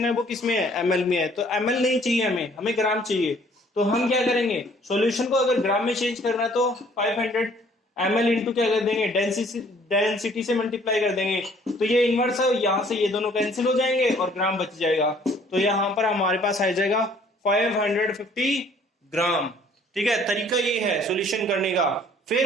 है वो किस में है, ml में है, तो ml नहीं चाहिए हमें ग्राम चाहिए। तो हम क्या करेंगे, सॉल्यूशन को अगर ग्राम में चेंज करना है तो 500 ml इंटू क्या कर देंगे, डेंसिटी से मल्टीप्लाई कर देंगे, तो ये इनवर्स है, यहाँ से ये दोनों कैंसिल हो जाएंगे और ग्राम बच जाएगा। तो यहाँ पर हमारे पास आ जाएगा 550 ग्राम। ठीक है, तरीका ये है सॉल्यूशन करने का।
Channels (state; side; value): normal; both; correlation 0.58